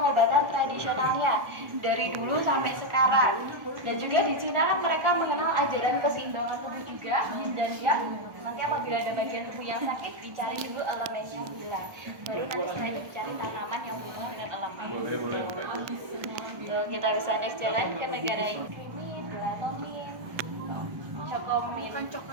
tradisionalnya dari dulu sampai sekarang. Dan juga di Cina kan mereka mengenal ajaran keseimbangan tubuh juga, yin dan yang. Nanti apabila ada bagian tubuh yang sakit, dicari dulu elemennya hilang. Baru nanti setelah itu dicari tanaman yang berhubungan dengan elemen. Tuh, kita bisa next jalan ke negara ini. Krimin, melatonin, cokomin. Bukan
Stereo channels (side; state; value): left; late; 1.3 ms